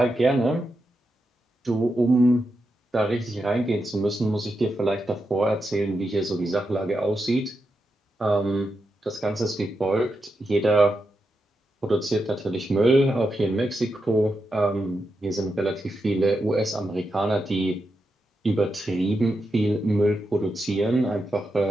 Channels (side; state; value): both; normal; correlation 0.86